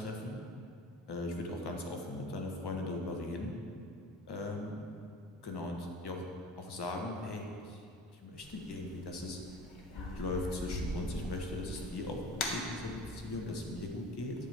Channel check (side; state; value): both; normal; correlation 0.40